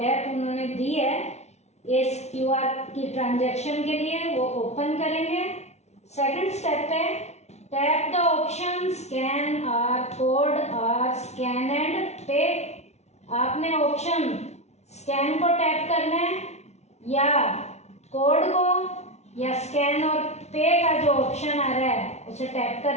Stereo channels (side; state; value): right; late; 0.32 ms